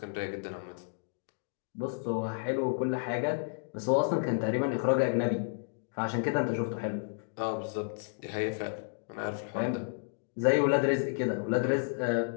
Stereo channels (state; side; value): silent; right; digital silence